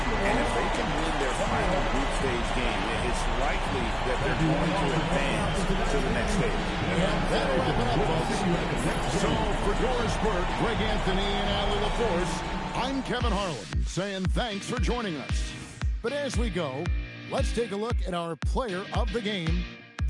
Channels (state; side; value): identical; both; correlation 1.00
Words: And if they can win their final group stage game, it's likely that they're going to advance to the next stage. And that'll wrap it up, folks. So for Doris Burke, Greg Anthony, and Allie LaForce, I'm Kevin Harlan saying thanks for joining us. But as we go, let's take a look at our player of the game,